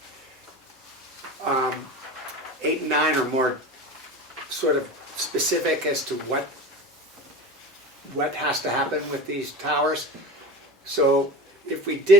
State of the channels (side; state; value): both; normal; correlation 0.30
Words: 8 and 9 are more sort of specific as to what has to happen with these towers. So if we